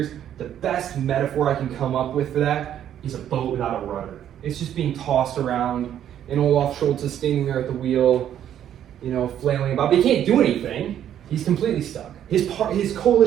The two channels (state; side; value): quieter; left; 10.4 dB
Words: the best metaphor I can come up with for that is a boat without a rudder. It's just being tossed around, and Olaf Scholz is standing there at the wheel, you know, flailing about. But he can't do anything. He's completely stuck. His